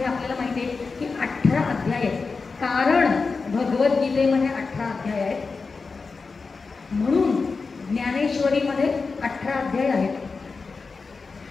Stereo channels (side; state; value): right; quieter; 4.5 dB